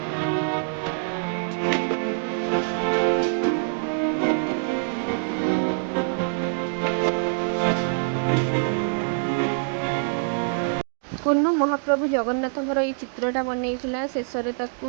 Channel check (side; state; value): left; silent; digital silence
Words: कुन्नू महाप्रभु जगन्नाथ ये चित्रटा बनईला शेष